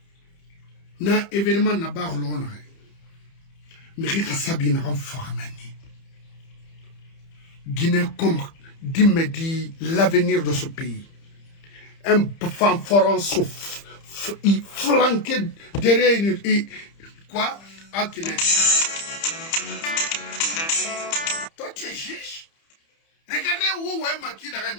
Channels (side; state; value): right; late; 30 ms